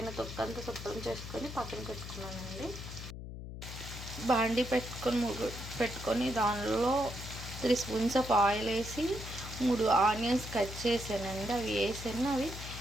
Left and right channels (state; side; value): noise; left; hum, 10 dB below the sound